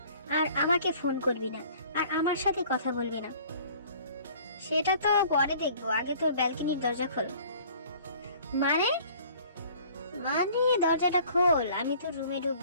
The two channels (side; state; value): both; inverted; correlation -0.52